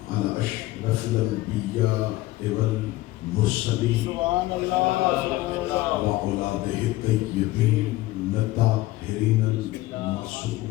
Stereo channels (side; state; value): right; quieter; 17.8 dB